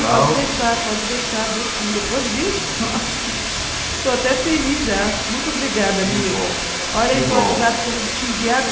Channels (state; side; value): identical; both; correlation 1.00